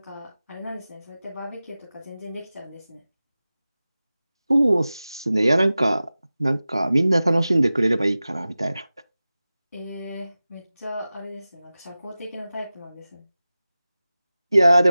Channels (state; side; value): inverted; both; correlation -0.96